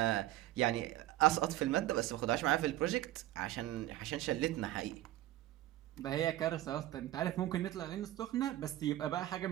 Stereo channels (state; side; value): quieter; left; 14.9 dB